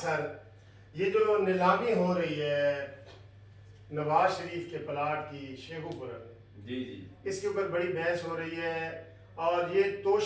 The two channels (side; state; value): both; identical; correlation 1.00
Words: یہ جو نیلامی ہو رہی ہے نواز شریف کے پلاٹ کی شیخو پورہ میں، جی جی اس کے اوپر بڑی بحث ہو رہی ہے اور یہ